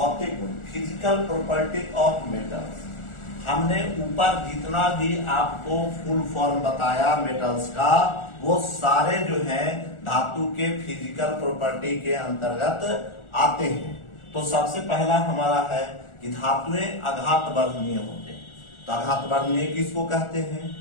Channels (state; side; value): late; right; 1.4 ms